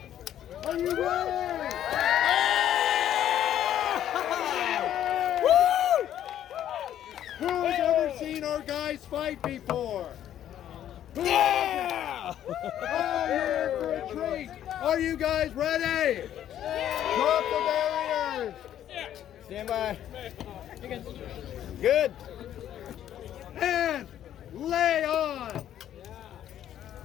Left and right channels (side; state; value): right; quieter; 11.1 dB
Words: Are you ready? Who's ever seen our guys fight before? Yeah! Oh, you're in for a treat. Are you guys ready? Drop the barriers. Stand by. Good. And lay on.